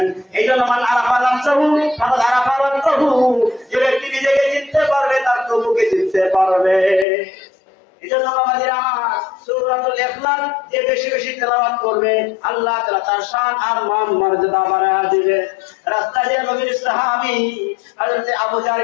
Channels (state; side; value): drops out; right; at 7.1 s